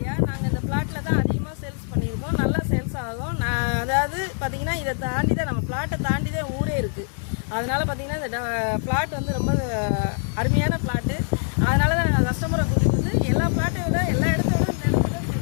நாங்கள் இந்த பிளாட்டில் தான் அதிகமாக சேல்ஸ் பண்ணியிருக்கோம். நல்லா சேல்ஸ் ஆகும். அதாவது பார்த்தீங்கன்னா, இதை தாண்டி தான் நம்ம பிளாட்டை தாண்டி தான் ஊரே இருக்குது. அதனால பார்த்தீங்கன்னா இந்த பிளாட் வந்து ரொம்ப அருமையான பிளாட்டு. அதனால தான் நாங்கள் கஸ்டமரை கூட்டிகிட்டு வந்து எல்லா பிளாட்டை விட எல்லா இடத்த விட இந்த இடத்துல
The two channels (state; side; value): silent; right; 63 dB below the other